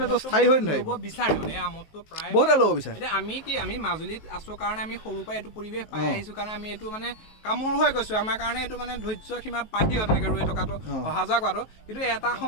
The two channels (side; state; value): right; late; 19 ms